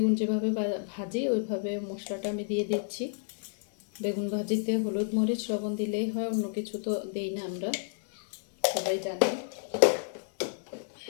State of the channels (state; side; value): silent; right; digital silence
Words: যেভাবে ভাজি ওইভাবে মশলাটা আমি দিয়ে দিচ্ছি। বেগুন ভাজিতে হলুদ মরিচ লবণ দিলেই হয়, অন্য কিছু তো দেই না আমরা, সবাই জানি।